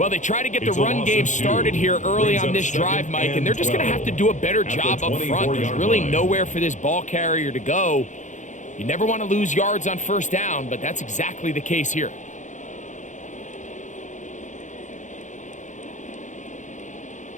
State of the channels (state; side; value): late; right; 0.35 ms